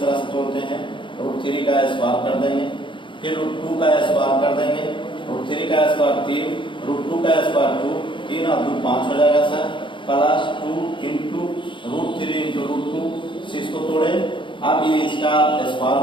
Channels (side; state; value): right; late; 0.24 ms